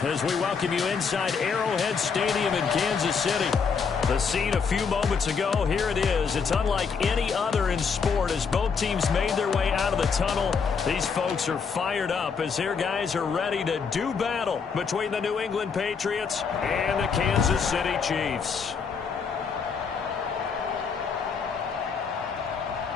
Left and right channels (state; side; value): quieter; right; 5.8 dB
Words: as we welcome you inside Arrowhead Stadium in Kansas City. The scene a few moments ago, here it is. It's unlike any other in sport as both teams made their way out of the tunnel. These folks are fired up as their guys are ready to do battle between the New England Patriots and the Kansas City Chiefs.